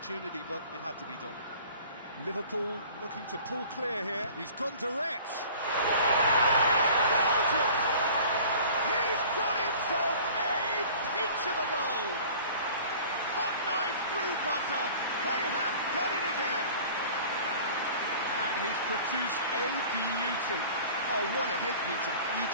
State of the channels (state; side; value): inverted; both; correlation -0.45